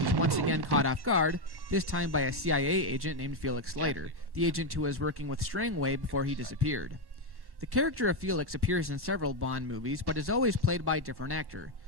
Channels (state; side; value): late; left; 1.1 ms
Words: once again caught off guard, this time by a CIA agent named Felix Leiter, the agent who was working with Strangway before he disappeared. The character of Felix appears in several Bond movies, but is always played by a different actor.